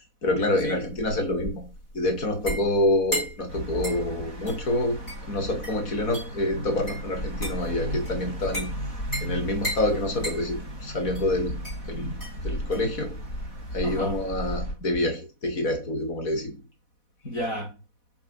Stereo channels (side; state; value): right; late; 4.1 ms